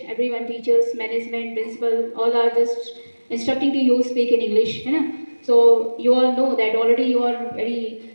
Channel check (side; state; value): both; inverted; correlation -1.00